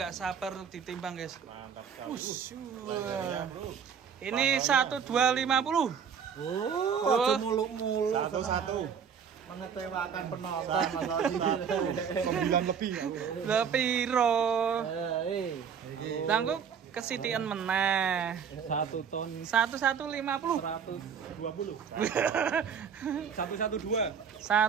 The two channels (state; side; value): quieter; left; 7.1 dB